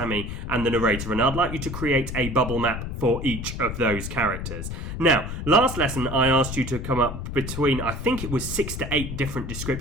and the narrator, and I'd like you to create a bubble map for each of those characters. Now, last lesson I asked you to come up between, I think it was 6 to 8 different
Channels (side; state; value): left; noise; rumble, 6 dB below the sound